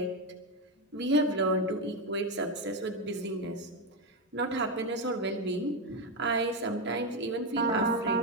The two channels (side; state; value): both; normal; correlation 0.09